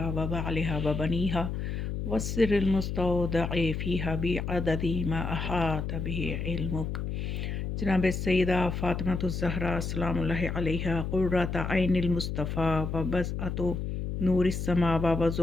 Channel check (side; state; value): left; noise; hum, 3 dB below the sound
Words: و بعلہا و بنیہا والسر المستودع فیہا بعدد ما احاط بہ علمک۔ جناب سیدہ فاطمہ الزہرا سلام اللہ علیہا قرۃ عین المصطفیٰ و بضعۃ نور السماء و